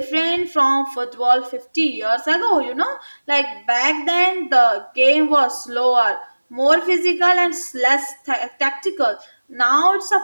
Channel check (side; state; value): both; inverted; correlation -1.00